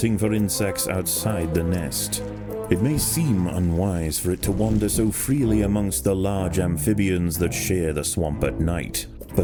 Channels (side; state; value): both; identical; correlation 1.00